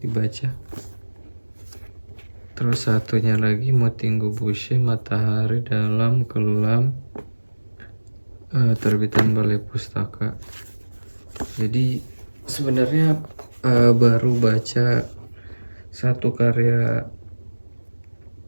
dibaca. Terus satunya lagi Motingo Boucher, Matahari dalam Kelam, terbitan Balai Pustaka. Jadi sebenarnya baru baca satu karya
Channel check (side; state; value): both; inverted; correlation -1.00